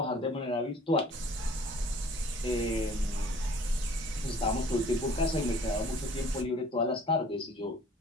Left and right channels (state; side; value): normal; both; correlation 0.52